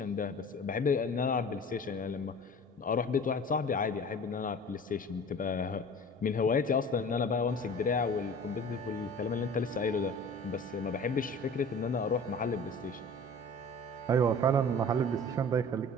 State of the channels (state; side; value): normal; both; correlation 0.42